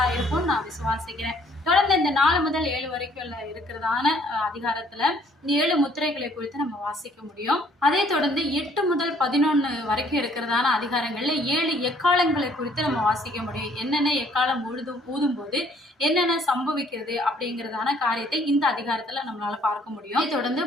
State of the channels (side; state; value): both; normal; correlation 0.62